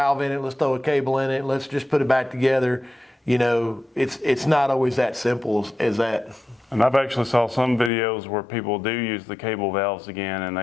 in it, let's throw a cable in it, let's just put it back together. You know, it's not always that simple as that. And I've actually saw some videos where people do use the cable valves again,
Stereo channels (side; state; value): right; drops out; at 7.9 s